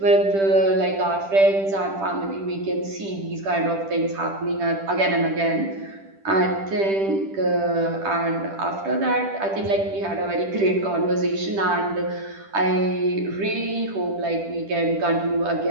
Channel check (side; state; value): left; late; 10 ms